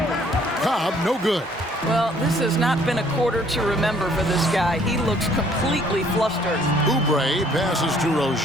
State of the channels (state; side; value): normal; both; correlation 0.61